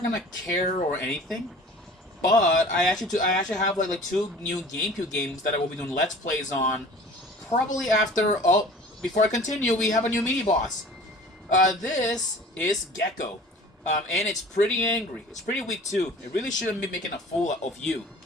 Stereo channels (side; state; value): both; normal; correlation 0.45